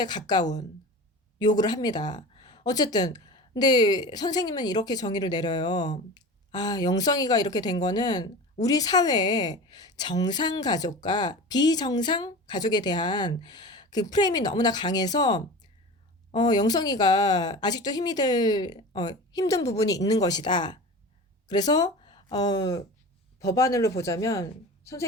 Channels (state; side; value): normal; both; correlation 0.33